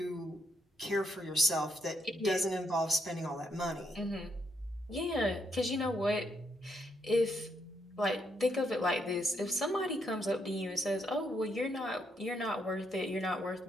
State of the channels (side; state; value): both; normal; correlation 0.76